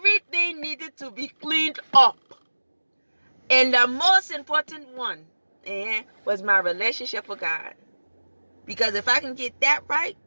needed to be cleaned up. And the most important one was my relationship with God. Because if I can get that right,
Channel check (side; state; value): both; inverted; correlation -1.00